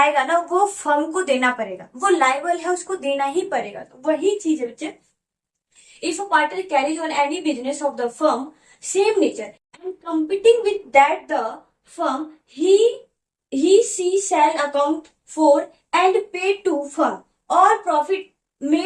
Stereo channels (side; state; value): both; identical; correlation 1.00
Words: ना, वो फर्म को देना पड़ेगा, वो लायबल है, उसको देना ही पड़ेगा। तो वही चीज है बच्चे, if a partner carries on any business of the firm same nature and competing with that the firm, she shall account for and pay to firm all profit